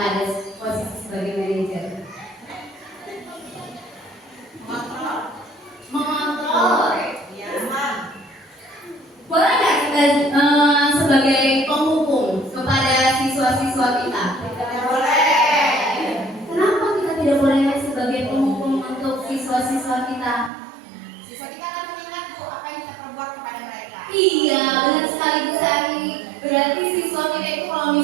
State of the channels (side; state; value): left; drops out; at 20.5 s